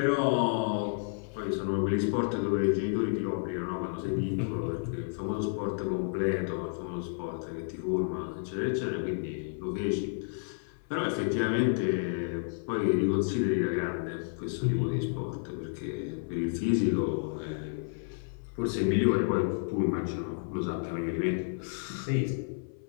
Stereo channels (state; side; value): silent; right; 57 dB below the other